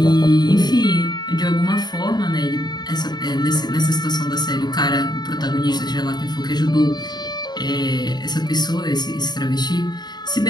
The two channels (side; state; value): right; late; 0.20 ms